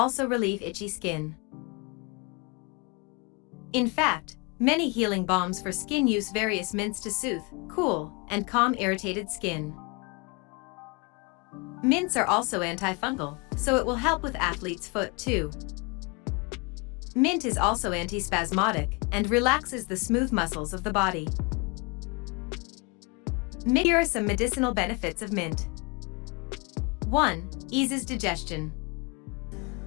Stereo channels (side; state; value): right; quieter; 29.2 dB